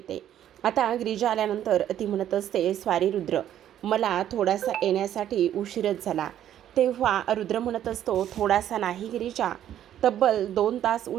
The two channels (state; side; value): quieter; left; 11.1 dB